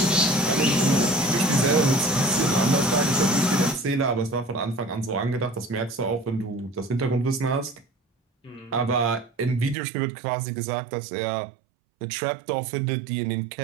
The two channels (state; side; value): drops out; left; at 9.8 s